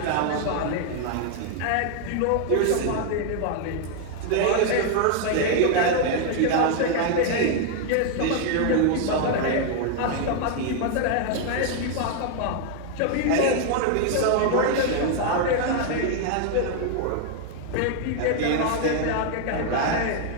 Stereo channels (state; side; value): different; both; correlation 0.00